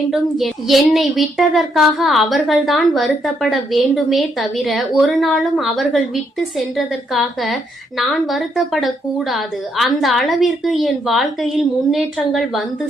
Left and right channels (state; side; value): normal; both; correlation 0.75